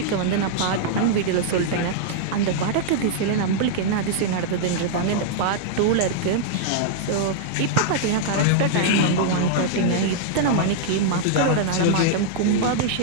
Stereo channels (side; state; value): both; different; correlation -0.01